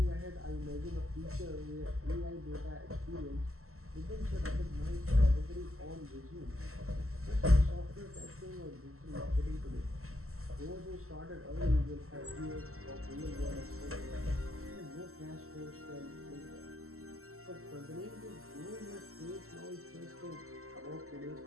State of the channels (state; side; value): late; left; 0.63 ms